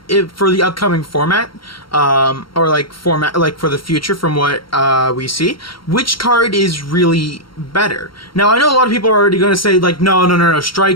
for the upcoming format, or like for the future from what we see, which card is really better. Now I know a lot of people are already going to say like no,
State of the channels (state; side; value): late; right; 0.73 ms